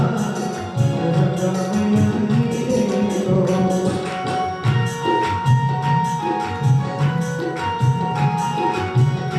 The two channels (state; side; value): identical; both; correlation 1.00